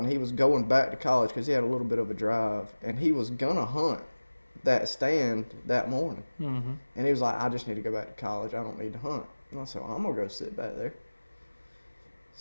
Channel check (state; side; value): inverted; both; correlation -1.00